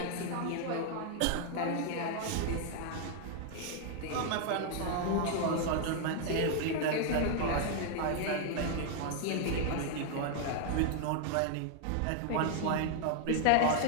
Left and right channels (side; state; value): both; different; correlation 0.00